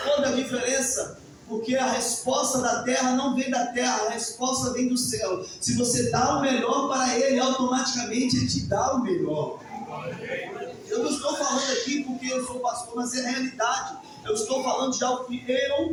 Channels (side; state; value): both; identical; correlation 1.00